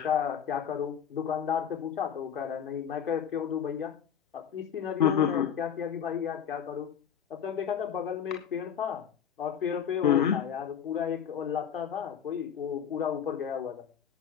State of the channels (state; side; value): quieter; right; 8.3 dB